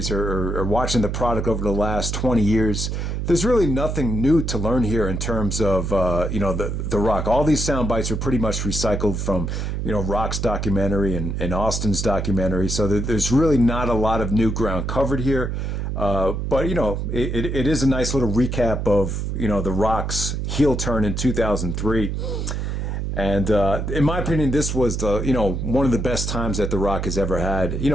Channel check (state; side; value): noise; right; hum, 2 dB below the sound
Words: or watching the product over the last 20 years, there's really nothing new to learn here in terms of, the Rock. All these sound bites are pretty much recycled from, Rock's documentary and Austin's documentary. So there's really not a lot of new ground covered here. But, it is a nice little recap of, the Rock's heel turn in 2003. And in my opinion, this was one of the best times that The Rock has ever had.